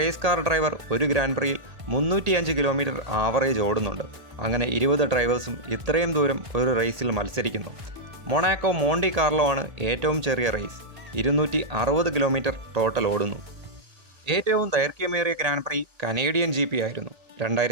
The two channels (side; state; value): left; late; 1.8 ms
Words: കാർ ഡ്രൈവർ ഒരു ഗ്രാൻഡ് പ്രിയിൽ 305 കിലോമീറ്റർ ആവറേജ് ഓടുന്നുണ്ട്. അങ്ങനെ 20 ഡ്രൈവേഴ്സും ഇത്രയും ദൂരം ഒരു റേസിൽ മത്സരിക്കുന്നു. മൊണാക്കോ മോണ്ടി കാർലോ ആണ് ഏറ്റവും ചെറിയ റേസ്. 260 കിലോമീറ്റർ ടോട്ടൽ ഓടുന്നു. ഏറ്റവും ദൈർഘ്യമേറിയ ഗ്രാൻഡ് പ്രീ കനേഡിയൻ GP ആയിരുന്നു.